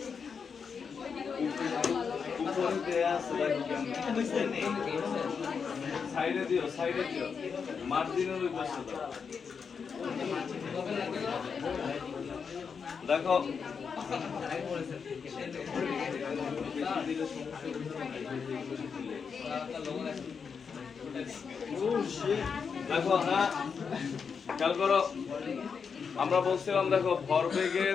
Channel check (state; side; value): quieter; right; 6.0 dB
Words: সাইডে দিও, সাইডে দিও, মার্জিনের ওই পাশে দাও। দেখো দেখো, হ্যাঁ খেয়াল করো, আমরা বলছিলাম দেখো